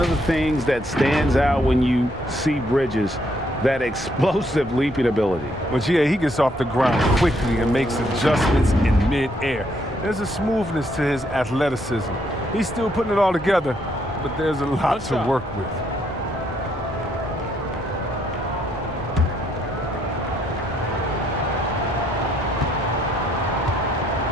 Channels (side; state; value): both; normal; correlation 0.72